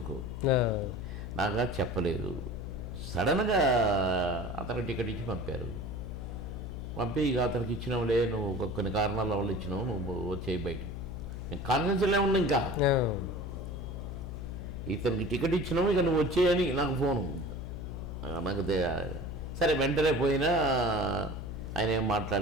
నాకు చెప్పలేదు. సడన్గా అతనికి టికెట్ ఇచ్చి పంపి ఇక అతనికి ఇచ్చినావులే, నువ్వు కొన్ని కారణాల వల్ల ఇచ్చినావు, నువ్వు వచ్చేయి బయటికి. నేను కాన్ఫిడెన్స్లో ఉన్నా. ఇంకా ఇతనికి టికెట్ ఇచ్చినావు, ఇక నువ్వు వచ్చేయని నాకు ఫోను. నాకు సరే వెంటనే పోయినా ఆయన ఏం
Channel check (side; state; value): left; noise; hum, 7 dB below the sound